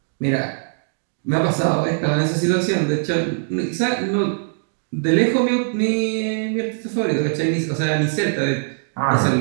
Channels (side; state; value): left; silent; digital silence